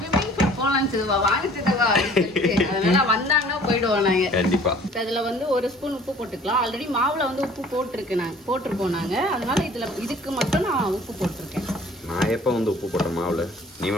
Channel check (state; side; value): normal; both; correlation 0.52